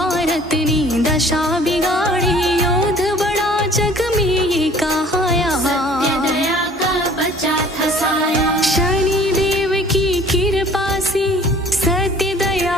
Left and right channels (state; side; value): normal; both; correlation 0.52